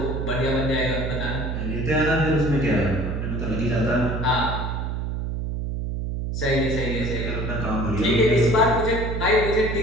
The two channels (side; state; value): right; noise; hum, 3 dB below the sound